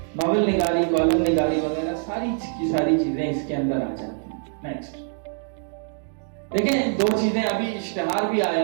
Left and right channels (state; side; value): silent; left; 62 dB below the other